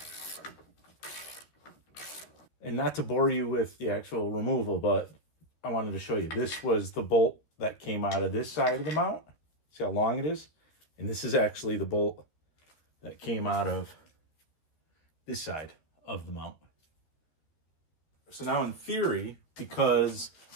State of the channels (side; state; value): right; late; 13 ms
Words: And not to bore you with the actual removal, but I wanted to show you. This was the bolt that came out of this side of the mount. See how long it is? And this is actually the bolt that came out of this side of the mount. So now in theory, because